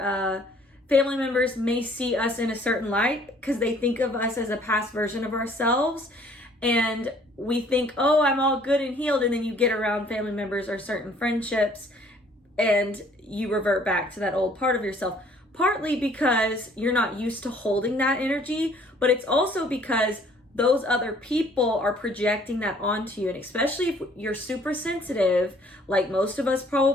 family members may see us in a certain light because they think of us as a past version of ourselves. And we think, oh, I'm all good and healed. And then you get around family members or certain friendships and you revert back to that old part of yourself. Partly because you're not used to holding that energy, but it's also because those other people are projecting that onto you. And especially if you're super sensitive, like most of us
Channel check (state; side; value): normal; both; correlation 0.58